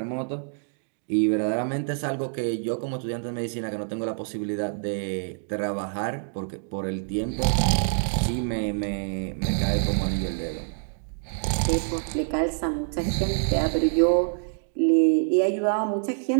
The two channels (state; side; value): silent; left; digital silence